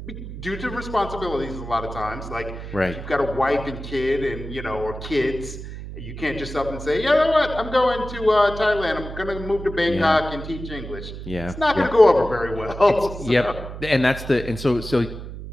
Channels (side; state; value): right; noise; hum, 10 dB below the sound